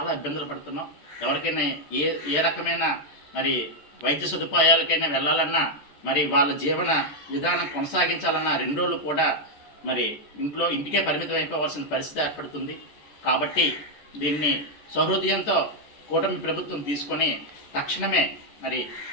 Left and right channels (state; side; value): late; right; 14 ms